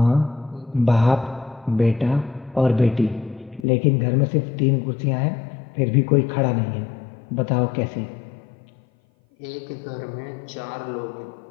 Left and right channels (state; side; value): drops out; right; at 3.7 s